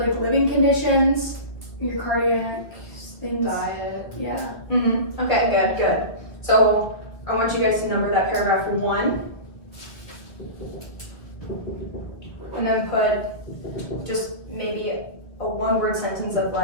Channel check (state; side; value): late; right; 1.9 ms